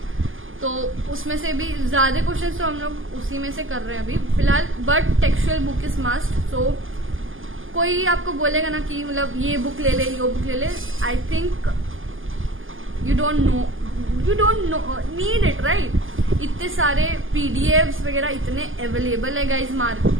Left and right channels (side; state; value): left; late; 0.58 ms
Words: तो उसमें से भी ज्यादा क्वेश्चंस तो हम लोग उसी में से कर रहे हैं अभी फिलहाल, but textual book is must. So कोई आपको बोलेगा ना कि मतलब ये बुक ले ले, ये बुक ले ले, I think you don't know need it, right. इतने सारे पीडीएफ्स वगैरह इतने अवेलेबल है गाइज,